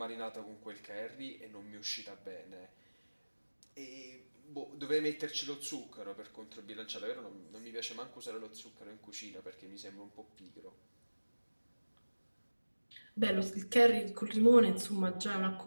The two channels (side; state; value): both; inverted; correlation -1.00